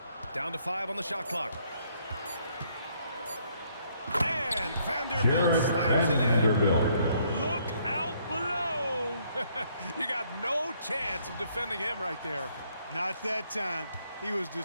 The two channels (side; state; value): both; inverted; correlation -0.68